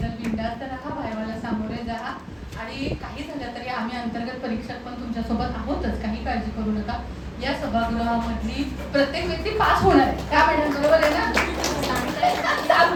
बिनधास्त राहा, वायवाला सामोरे जा आणि काही झालं तरी आम्ही अंतर्गत परीक्षक पण तुमच्यासोबत आहोतच, काही काळजी करू नका। या सभागृहामधली प्रत्येक व्यक्ती पास होणार आहे, त्या मॅडम बरोबर आहे ना?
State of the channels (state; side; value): identical; both; correlation 1.00